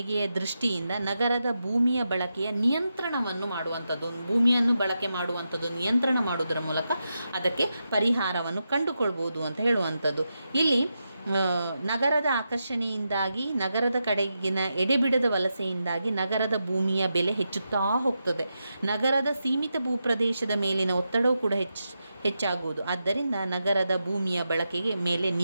ದೃಷ್ಟಿಯಿಂದ ನಗರದ ಭೂಮಿಯ ಬಳಕೆಯ ನಿಯಂತ್ರಣವನ್ನು ಮಾಡುವಂಥದ್ದು, ಭೂಮಿಯನ್ನು ಬಳಕೆ ಮಾಡುವಂಥದ್ದು ನಿಯಂತ್ರಣ ಮಾಡುವುದರ ಮೂಲಕ ಅದಕ್ಕೆ ಪರಿಹಾರವನ್ನು ಕಂಡುಕೊಳ್ಬೋದು ಅಂತ ಹೇಳುವಂಥದ್ದು. ಇಲ್ಲಿ ನಗರದ ಆಕರ್ಷಣೆಯಿಂದಾಗಿ, ನಗರದ ಕಡೆಗಿನ ಎಡೆಬಿಡದ ವಲಸೆಯಿಂದಾಗಿ ನಗರದ ಭೂಮಿಯ ಬೆಲೆ ಹೆಚ್ಚುತ್ತಾ ಹೋಗ್ತದೆ. ನಗರದ ಸೀಮಿತ ಭೂಪ್ರದೇಶದ ಮೇಲಿನ ಒತ್ತಡವೂ ಕೂಡ ಹೆಚ್ಚಾಗುವುದು. ಆದ್ದರಿಂದ ನಗರದ ಭೂಮಿಯ ಬಳಕೆಗೆ ಮೇಲೆ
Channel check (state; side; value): inverted; both; correlation -0.87